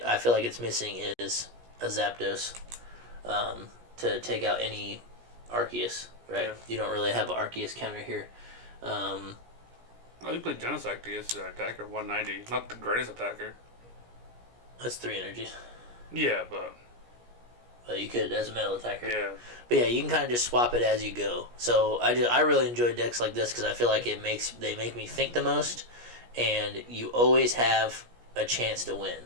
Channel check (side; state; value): left; late; 17 ms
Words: I feel like it's missing is a Zapdos to take out any Arceus, right? Yeah. You don't really have an Arceus counter here. Oh, you played Genesect to use that attacker, 190. Not the greatest attacker. That's 3 energies. Yeah, but You could as a metal attacker. yeah. But yeah, you can kind of just swap it as you go. So I really enjoy decks like this because I feel like they make me think the most, and you always have a chance to win.